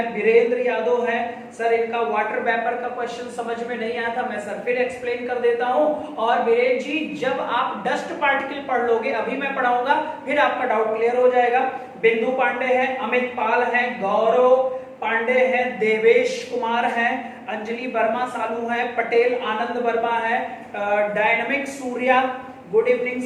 वीरेंद्र यादव है, सर इनका वाटर वेपर का क्वेश्चन समझ में नहीं आया था, मैं सर फिर एक्सप्लेन कर देता हूं। और वीरेंद्र जी जब आप डस्ट पार्टिकल पढ़ लोगे, अभी मैं पढ़ाऊंगा, फिर आपका डाउट क्लियर हो जाएगा। बिंदु पांडे है, अमित पाल है, गौरव पांडे है, देवेश कुमार है, अंजलि वर्मा सालू है, पटेल आनंद वर्मा है, dynamic Surya, good evening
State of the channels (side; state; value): both; identical; correlation 1.00